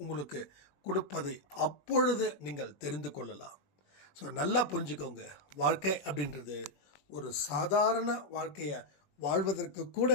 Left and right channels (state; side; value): late; right; 21 ms